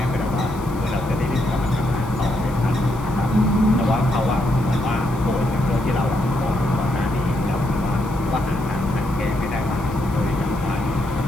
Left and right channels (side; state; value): left; noise; hiss, 22 dB below the sound